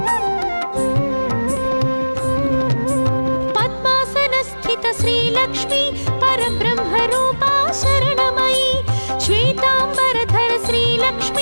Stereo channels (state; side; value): inverted; both; correlation -1.00